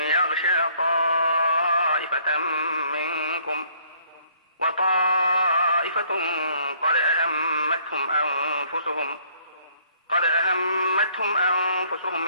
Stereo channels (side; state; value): both; inverted; correlation -0.62